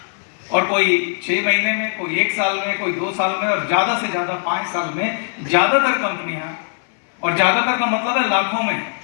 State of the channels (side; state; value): right; silent; 66 dB below the other